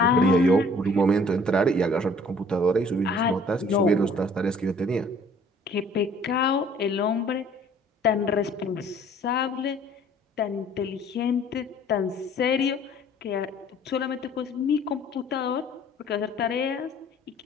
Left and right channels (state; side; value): normal; both; correlation 0.55